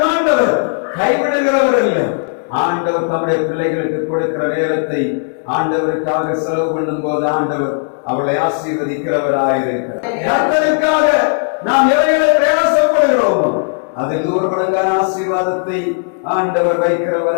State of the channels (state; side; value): silent; right; digital silence